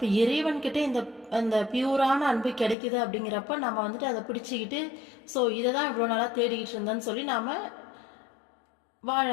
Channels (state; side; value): drops out; right; at 2.8 s